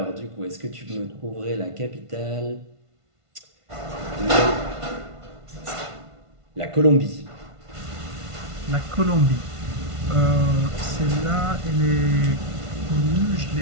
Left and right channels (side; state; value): left; late; 1.5 ms